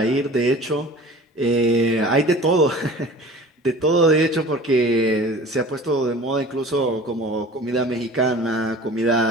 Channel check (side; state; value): both; normal; correlation 0.42